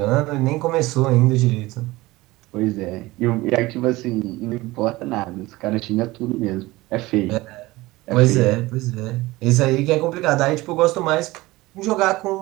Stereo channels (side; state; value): left; quieter; 19.7 dB